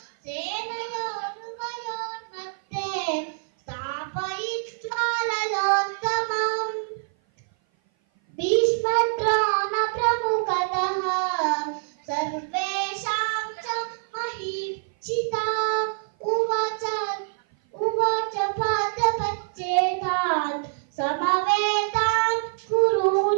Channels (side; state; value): left; silent; 56 dB below the other